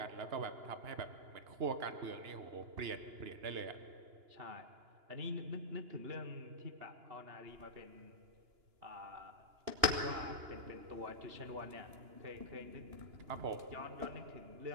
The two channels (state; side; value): late; left; 2.9 ms